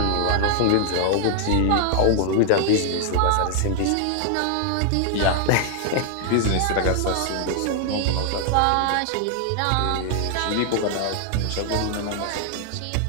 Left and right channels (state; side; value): different; both; correlation 0.00